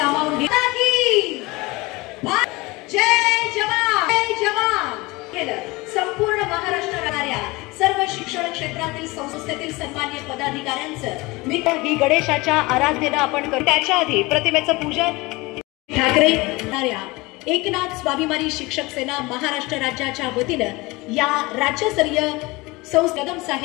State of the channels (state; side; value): quieter; right; 23.0 dB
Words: घेतात की जय जवान जय जवान केलं। संपूर्ण महाराष्ट्रातल्या सर्व शिक्षण क्षेत्रातील संस्थेतील सन्माननीय पदाधिकाऱ्यांचं मी गणेशाच्या आराधनेला आपण करू। त्याच्या आधी प्रतिमेचं पूजन ठाकरे एकनाथ स्वाभिमानी शिक्षक सेना महाराष्ट्र राज्याच्या वतीनं या राज्यस्तरीय कदम